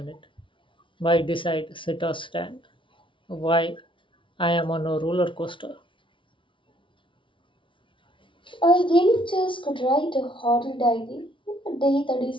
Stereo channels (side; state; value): right; late; 0.25 ms